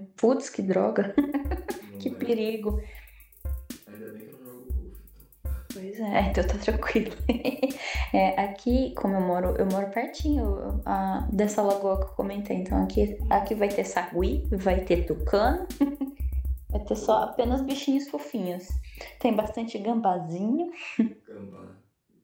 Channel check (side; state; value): both; identical; correlation 1.00